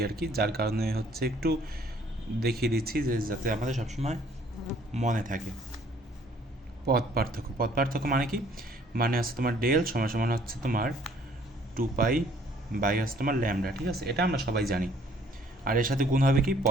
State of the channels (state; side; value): normal; both; correlation 0.60